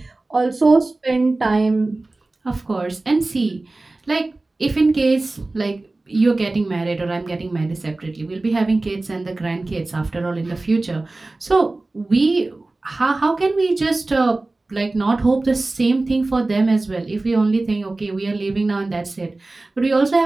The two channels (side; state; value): left; quieter; 3.1 dB